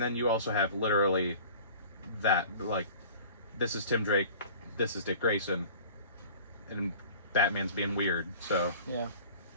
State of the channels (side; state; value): both; inverted; correlation -0.42